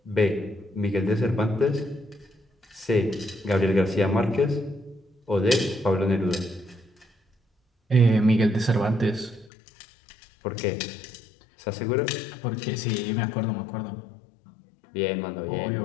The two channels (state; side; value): drops out; right; at 9.5 s